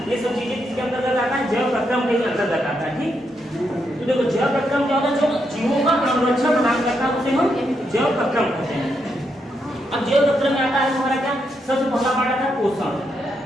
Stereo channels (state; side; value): normal; both; correlation 0.80